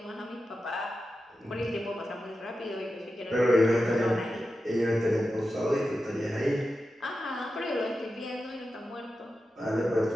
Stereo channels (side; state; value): both; normal; correlation 0.91